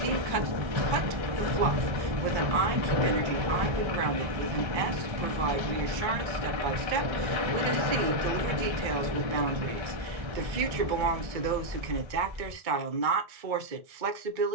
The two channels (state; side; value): late; left; 1.6 ms